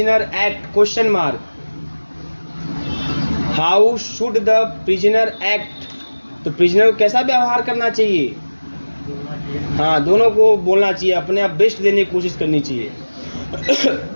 act, question mark, how should the prisoner act, तो प्रिजनर को कैसा व्यवहार करना चाहिए, हाँ, दोनों को बोलना चाहिए, अपने आप बेस्ट देने की कोशिश करनी चाहिए।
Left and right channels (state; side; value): inverted; both; correlation -1.00